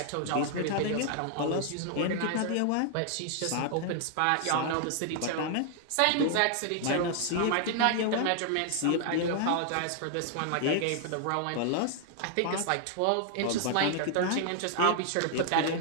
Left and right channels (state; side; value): different; both; correlation 0.00